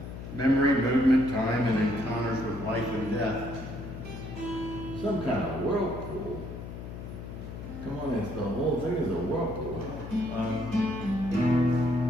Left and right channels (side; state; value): left; noise; hum, 10 dB below the sound